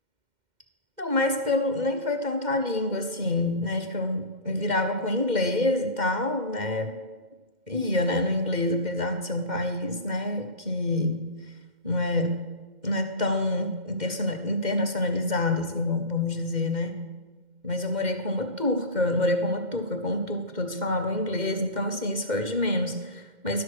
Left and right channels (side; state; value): left; late; 2.1 ms